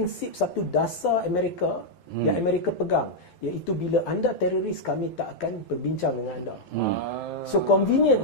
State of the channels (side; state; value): right; late; 12 ms